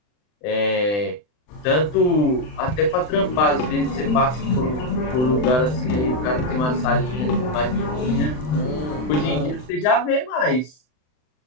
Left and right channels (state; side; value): late; right; 39 ms